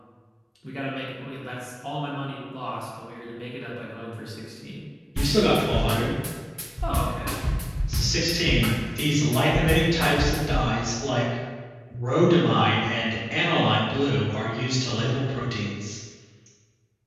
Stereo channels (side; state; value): both; identical; correlation 1.00